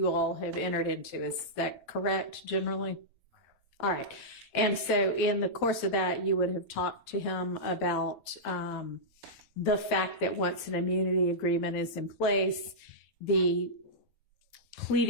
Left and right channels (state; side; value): late; right; 7.8 ms